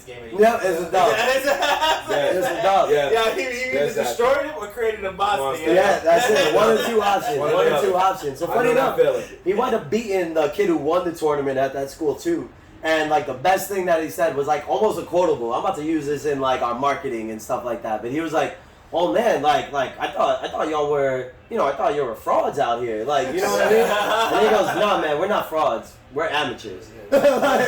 game anymore. Yeah, it's a dub. It's a dub. Yeah, he either destroyed it or created a monster. Yeah, that's it. One or two options. So funny enough, he wound up beating the kid who won the tournament at that school too. And like the best thing that he said was like almost a quotable. I'm about to use this in like our marketing and stuff like that. But he was like, oh man, like I thought y'all were, you know, I thought you were frauds out here. Like, you know what I mean? And he goes, no man, we're not frauds. We're amateurs.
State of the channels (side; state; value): both; identical; correlation 1.00